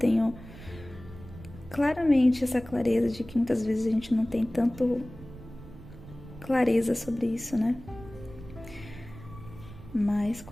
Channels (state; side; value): noise; right; rumble, 16 dB below the sound